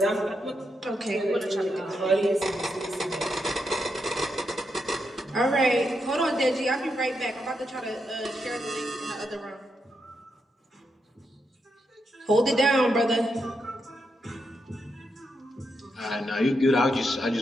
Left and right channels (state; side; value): normal; both; correlation 0.83